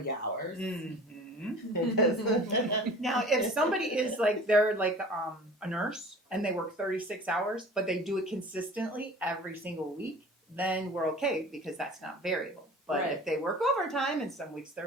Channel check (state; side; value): normal; both; correlation 0.42